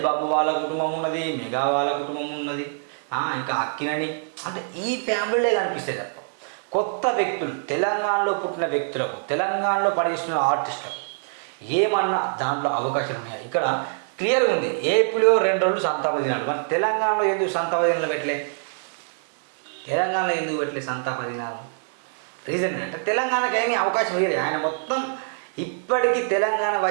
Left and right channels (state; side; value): silent; left; digital silence